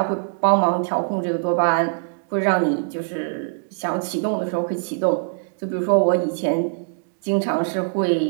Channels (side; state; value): left; silent; digital silence